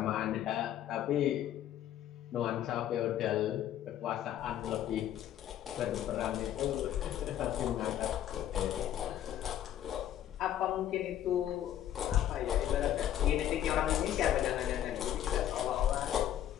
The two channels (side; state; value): right; quieter; 11.3 dB